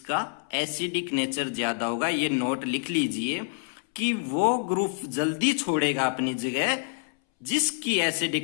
एसिडिक नेचर ज्यादा होगा। ये नोट लिख लीजिए कि वो ग्रुप जल्दी छोड़ेगा अपनी जगह जिसकी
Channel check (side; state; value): right; silent; 60 dB below the other